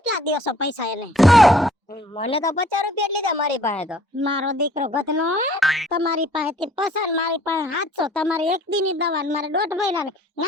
દેશો પૈસા એને? મને તો 50 રૂપિયા જ લીધા મારી પાસે તો. મારો દીકરો ગતનો તમારી પાસેથી પસાર, મારી પાસે 700. તમારે એક દીની દવા ને મારે 1.5 મહિનાની.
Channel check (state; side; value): normal; both; correlation 0.57